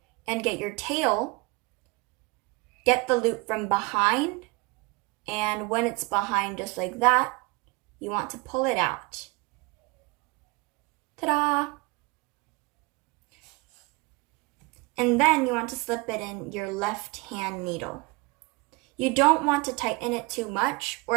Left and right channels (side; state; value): left; quieter; 25.6 dB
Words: and get your tail, get the loop from behind, and when it's behind just like that, you want to pull it out. Ta-da! And then you want to slip it in your left hand needle. You don't want to tighten it too much, or